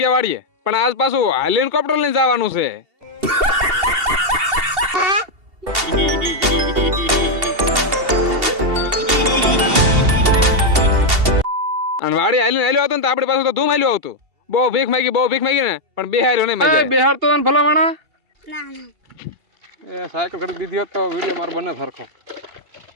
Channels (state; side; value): late; left; 2.7 ms